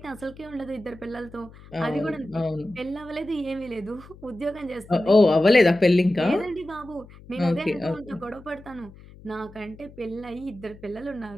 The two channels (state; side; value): noise; left; hum, 21 dB below the sound